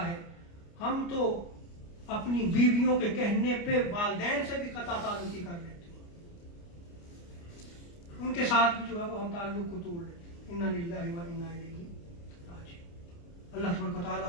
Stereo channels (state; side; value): late; right; 29 ms